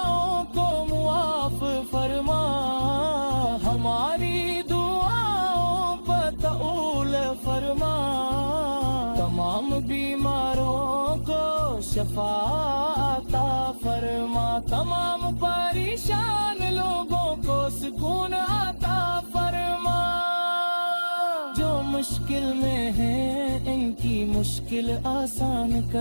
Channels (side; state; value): both; inverted; correlation -1.00